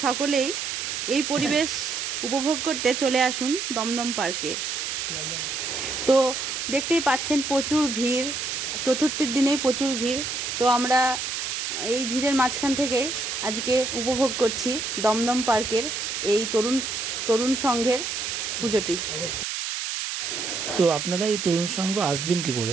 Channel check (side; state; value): right; noise; hiss, 3 dB below the sound